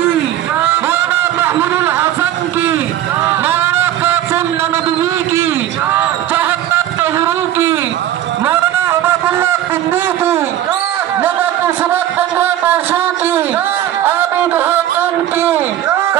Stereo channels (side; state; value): left; quieter; 12.3 dB